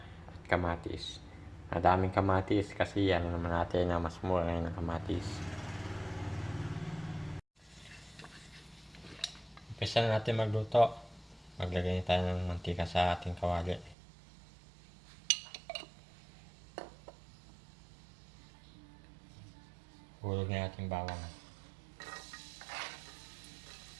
at kamatis. Madaming kamatis kasi yan naman natin na mas mura ngayon ng kamatis. Umpisa na natin magluto. Maglagay tayo ng mantika sa ating kawali. Hulog na ating bawang.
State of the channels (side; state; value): left; drops out; at 14.0 s